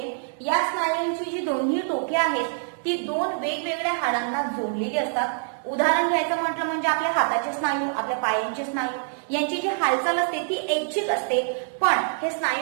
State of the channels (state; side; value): silent; left; 62 dB below the other